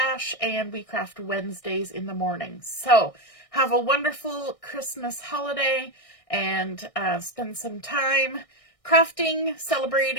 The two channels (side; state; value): right; late; 1.6 ms